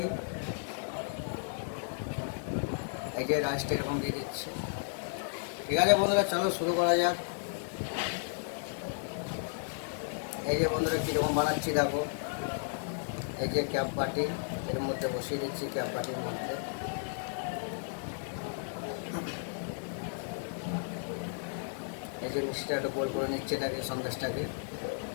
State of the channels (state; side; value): silent; right; digital silence